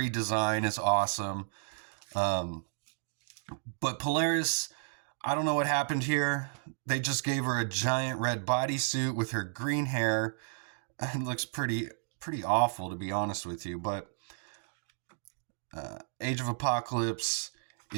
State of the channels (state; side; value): silent; left; digital silence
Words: is awesome. But Polaris, I don't know what happened here. They just gave her a giant red bodysuit with her green hair. It looks pretty awful, to be honest with you. But Age of Apocalypse